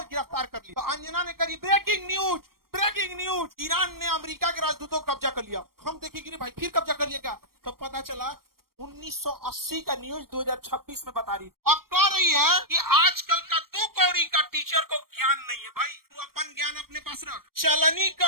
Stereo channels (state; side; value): late; left; 0.93 ms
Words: गिरफ्तार कर लिया। तो अंजना ने करी ब्रेकिंग न्यूज, ईरान ने अमेरिका के राजदूतों को कब्जा कर लिया। हम देखेंगे भाई फिर कब्जा कर लिया क्या, तो पता चला 1980 का न्यूज 2026 में बता रही और कह रही है कि आजकल का 2 कौड़ी का टीचर को ज्ञान नहीं है। भाई तू अपन ज्ञान अपने पास रख। चलनी